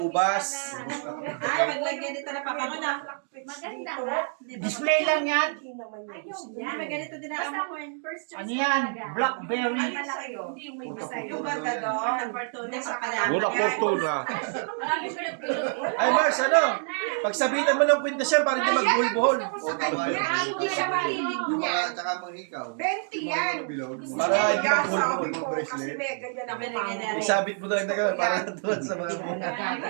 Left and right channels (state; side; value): silent; left; 57 dB below the other